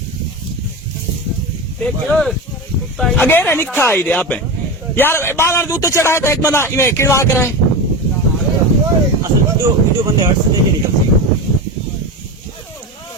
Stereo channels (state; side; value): normal; both; correlation 0.22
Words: अगेर निखा आई दे आप यार बाल उत्ते चढ़ाए तो एक बंदा इन्हें किड़वा कराए असल वीडियो बंदे हट से नहीं निकलती।